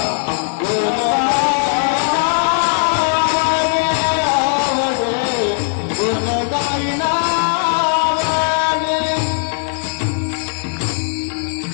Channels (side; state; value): right; silent; 64 dB below the other